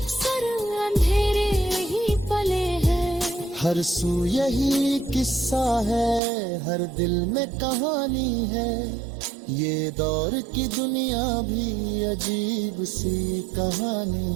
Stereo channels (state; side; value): drops out; left; at 6.2 s